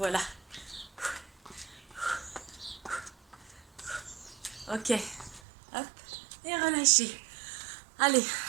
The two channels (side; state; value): left; drops out; at 5.4 s